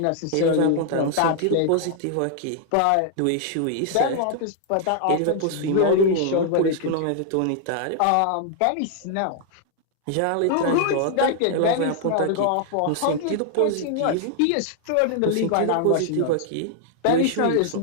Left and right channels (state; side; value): different; both; correlation 0.00